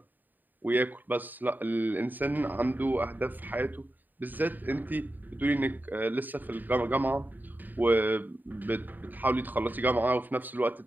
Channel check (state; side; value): late; left; 0.088 ms